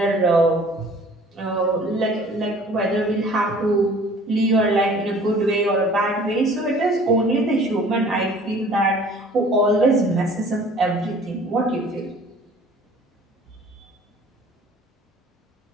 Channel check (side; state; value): both; normal; correlation 0.50